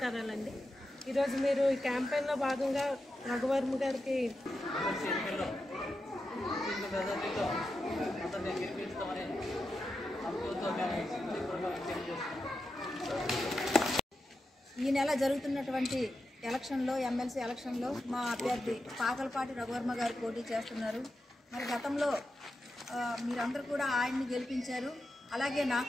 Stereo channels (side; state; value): both; normal; correlation 0.89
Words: ఈరోజు మీరు ఈ క్యాంపెయిన్లో భాగంగా రఘువర్మ గారికి ఈ నెల జరుగుతున్నటువంటి ఎలక్షన్లో ఎమ్మెల్సీ ఎలక్షన్లో మా అభ్యర్థి పాకలపాటి రఘువర్మ గారు పోటీ చేస్తున్నారు. మరి గతంలో మీరందరూ కూడా ఆయన్ని గెలిపించారు, అలాగే